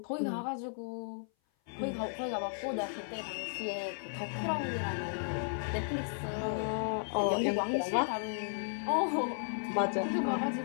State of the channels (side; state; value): right; silent; 55 dB below the other